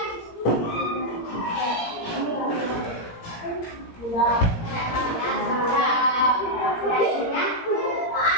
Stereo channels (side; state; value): right; late; 17 ms